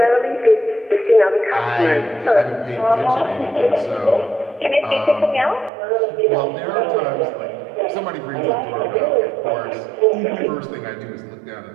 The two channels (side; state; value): left; drops out; at 5.7 s